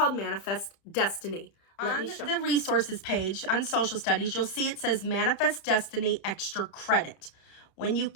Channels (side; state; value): right; late; 30 ms